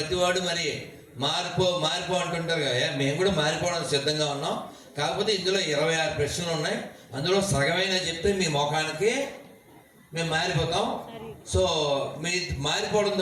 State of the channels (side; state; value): both; identical; correlation 1.00